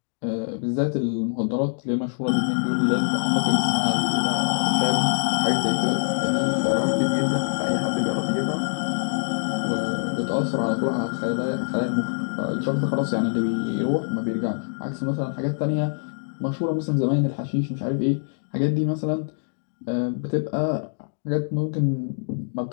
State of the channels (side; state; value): right; silent; digital silence